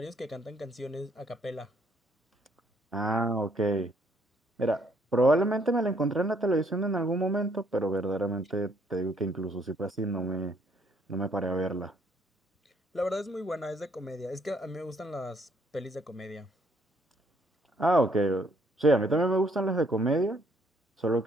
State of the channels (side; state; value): both; normal; correlation 0.67